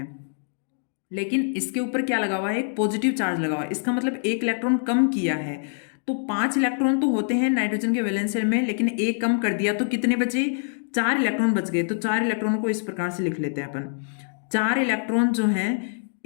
लेकिन इसके ऊपर क्या लगा हुआ है, एक पॉजिटिव चार्ज लगा हुआ है, इसका मतलब एक इलेक्ट्रॉन कम किया है। तो 5 इलेक्ट्रॉन तो होते हैं नाइट्रोजन के वैलेंस शेल में, लेकिन एक कम कर दिया, तो कितने बचे, 4 इलेक्ट्रॉन बच गए। तो 4 इलेक्ट्रॉन को इस प्रकार से लिख लेते हैं अपन। 4 इलेक्ट्रॉन जो हैं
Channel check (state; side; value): silent; right; digital silence